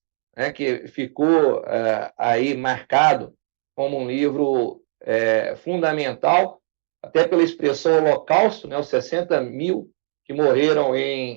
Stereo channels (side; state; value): left; silent; digital silence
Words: né, que ficou aí marcado como um livro fundamental, até pela expressão Holocausto, né, os 60 mil que morreram